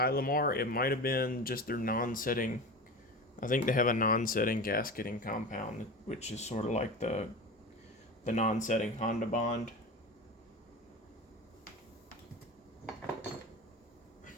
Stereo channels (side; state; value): both; normal; correlation 0.29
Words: it might have been just their non-setting. I think they have a non-setting gasketing compound, which is sort of like the non-setting Honda Bond.